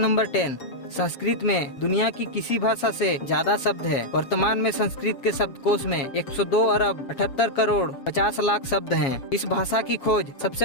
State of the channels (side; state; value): right; late; 7.4 ms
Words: 10, संस्कृत में दुनिया की किसी भाषा से ज्यादा शब्द है। वर्तमान में संस्कृत के शब्दकोश में 102 अरब 78 करोड़ 50 लाख शब्द हैं। इस भाषा की खोज